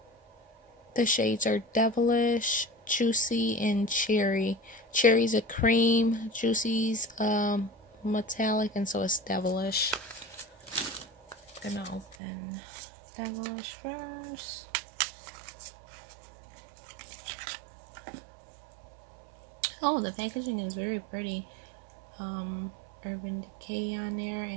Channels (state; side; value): drops out; left; at 12.2 s